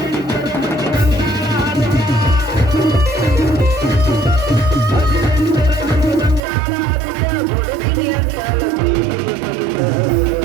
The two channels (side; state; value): left; drops out; at 6.4 s